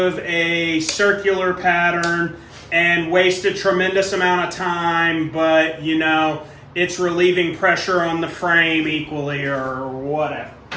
a circular pattern and waste a tremendous amount of time, but it's relieving pressure on the frame equally or whatever.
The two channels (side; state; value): both; identical; correlation 1.00